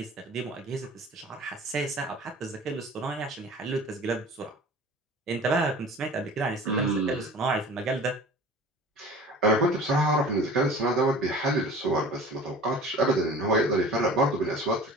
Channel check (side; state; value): both; normal; correlation 0.41